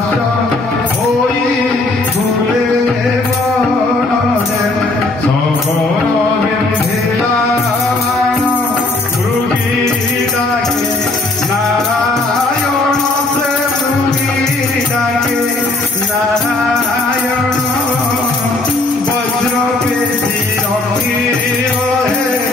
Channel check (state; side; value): quieter; right; 3.0 dB